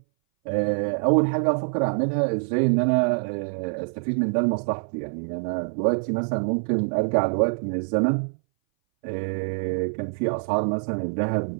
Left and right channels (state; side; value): silent; left; 60 dB below the other